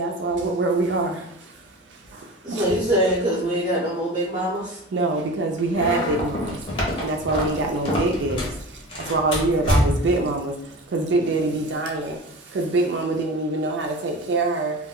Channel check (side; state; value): both; normal; correlation 0.34